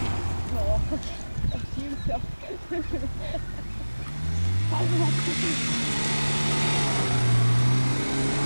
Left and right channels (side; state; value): both; inverted; correlation -1.00